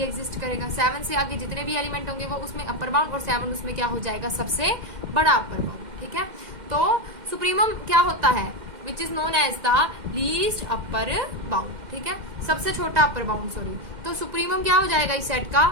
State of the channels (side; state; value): left; late; 2.1 ms